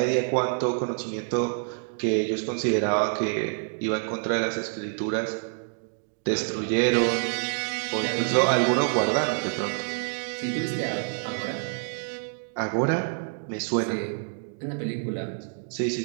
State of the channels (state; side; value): silent; left; digital silence